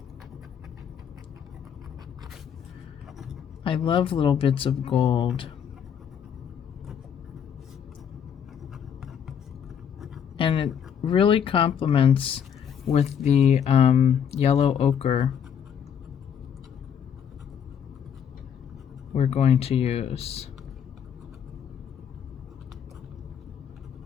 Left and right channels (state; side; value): quieter; right; 8.2 dB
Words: I love little bits of gold. And it really complements with the yellow ochre we're going to use.